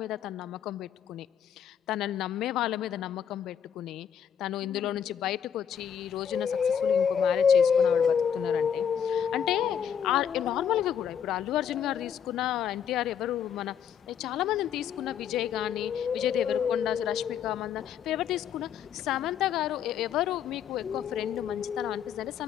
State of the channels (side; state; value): right; quieter; 8.3 dB